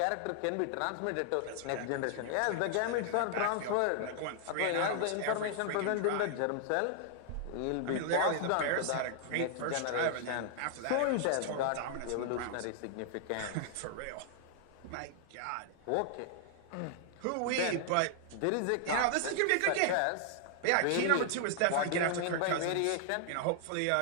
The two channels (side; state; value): both; different; correlation 0.00